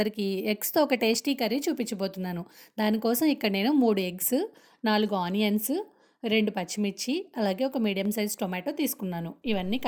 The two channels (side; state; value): both; identical; correlation 1.00